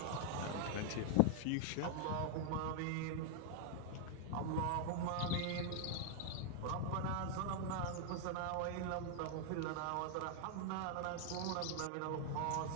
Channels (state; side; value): different; both; correlation 0.00